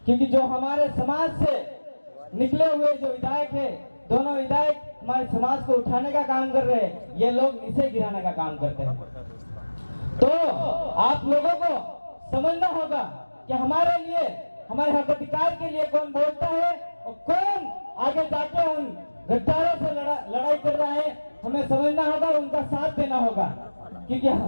क्योंकि जो हमारे समाज से निकले हुए जो विधायक है, दोनों विधायक हमारे समाज को उठाने का काम कर रहे हैं, ये लोग नीचे गिराने का काम करते हैं। तो आप लोगों को समझना होगा कि हमारे लिए, हमारे हक अधिकार के लिए कौन बोलता है और कौन आगे जाके उन गद्दारों से लड़ाई कर रहा है। हमें समझना होगा, उनका साथ देना होगा। क्योंकि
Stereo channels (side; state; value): both; inverted; correlation -1.00